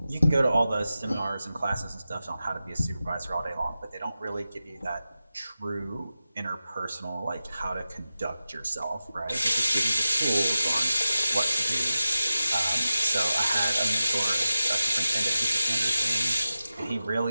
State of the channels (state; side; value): inverted; both; correlation -0.93